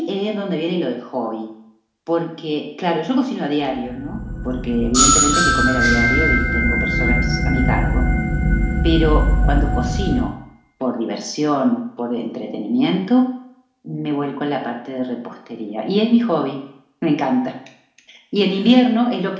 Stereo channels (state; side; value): identical; both; correlation 1.00